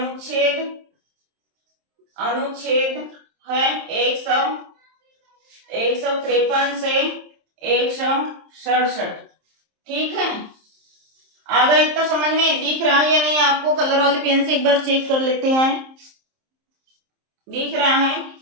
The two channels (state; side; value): late; left; 27 ms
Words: अनुच्छेद है 153 से 167। ठीक है, आगे इतना समझ में दिख रहा है या नहीं आपको? कलर वाले पेन से एक बार चेक कर लेते हैं। दिख रहा है?